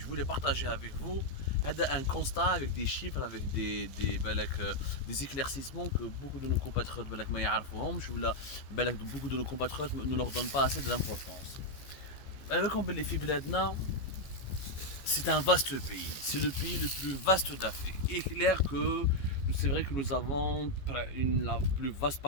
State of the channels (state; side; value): late; right; 14 ms